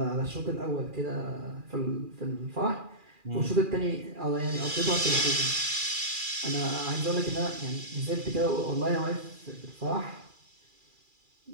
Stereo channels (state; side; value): late; left; 2.4 ms